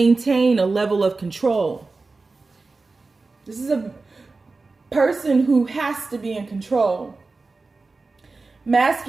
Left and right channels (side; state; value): left; quieter; 3.8 dB